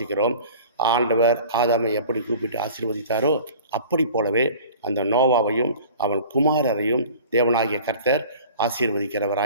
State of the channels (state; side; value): inverted; both; correlation -0.43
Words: ஆண்டவர் ஆதாமை எப்படி கூப்பிட்டு ஆசீர்வதித்தாரோ அப்படி போலவே அந்த நோவாவையும் அவன் குமாரரையும் தேவனாகிய கர்த்தர்